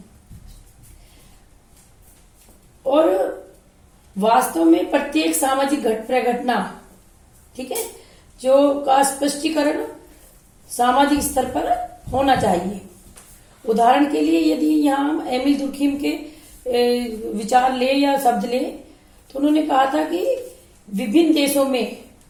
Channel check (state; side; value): identical; both; correlation 1.00